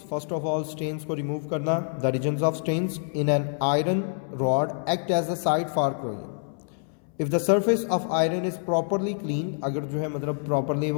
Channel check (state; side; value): silent; right; 60 dB below the other